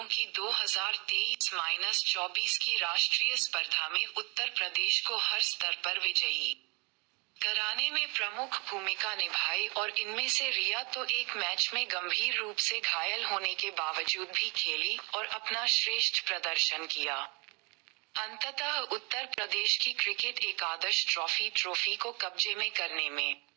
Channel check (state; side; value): quieter; left; 30.2 dB